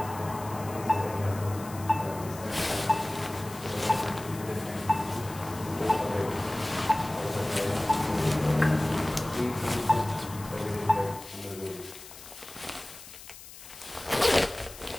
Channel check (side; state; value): left; noise; hiss, 16 dB below the sound